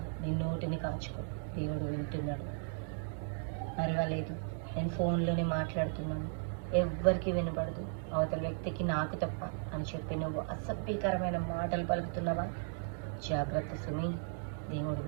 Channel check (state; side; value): silent; left; digital silence